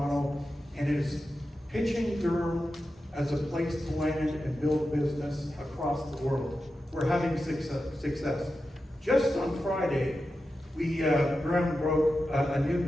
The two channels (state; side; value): normal; both; correlation 0.91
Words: and is pitching Durham as a place to land and build business across the world. We're having success. Just on Friday, we ground broke a new